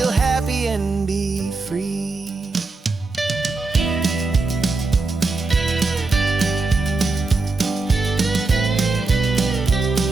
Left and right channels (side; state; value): left; quieter; 3.7 dB